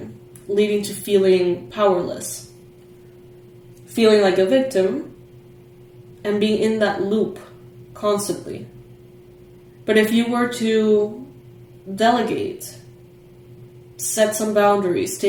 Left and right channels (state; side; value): identical; both; correlation 1.00